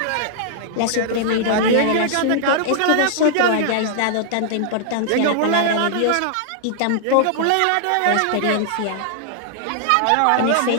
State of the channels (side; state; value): both; different; correlation -0.01